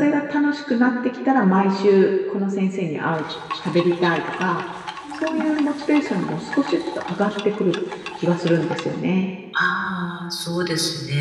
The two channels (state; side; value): identical; both; correlation 1.00